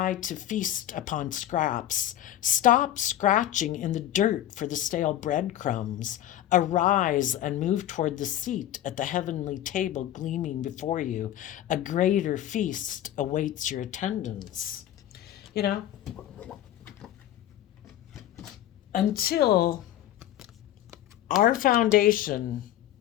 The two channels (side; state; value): right; quieter; 12.4 dB